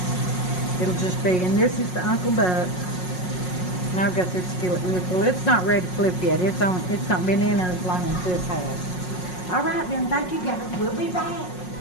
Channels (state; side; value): late; right; 5.5 ms